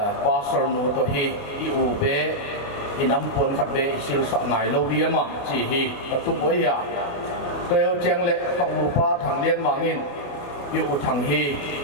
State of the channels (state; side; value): late; right; 28 ms